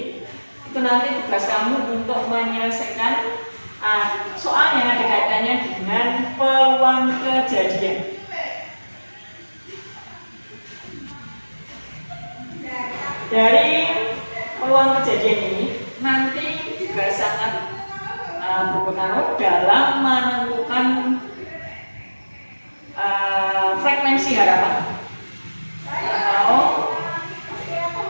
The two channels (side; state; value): both; inverted; correlation -1.00